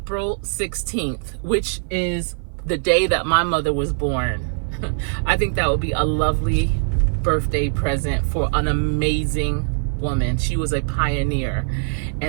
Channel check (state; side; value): silent; left; 55 dB below the other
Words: 16th, which is the day that my mother was born. I think that would be a lovely birthday present for an amazing woman. She was a pioneer,